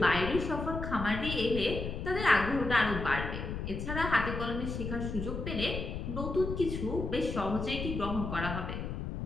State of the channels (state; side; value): noise; left; rumble, 5 dB below the sound